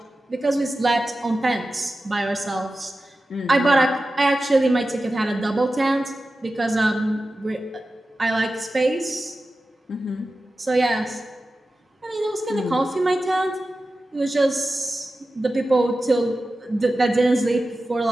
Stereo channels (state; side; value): normal; both; correlation 0.94